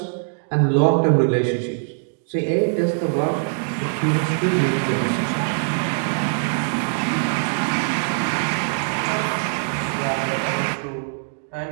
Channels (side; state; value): left; silent; digital silence